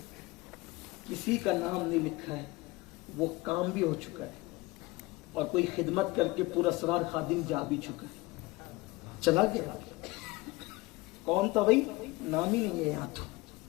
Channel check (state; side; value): quieter; right; 21.8 dB